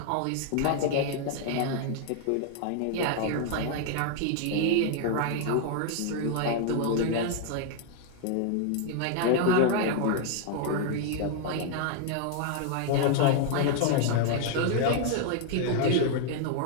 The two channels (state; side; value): different; both; correlation 0.00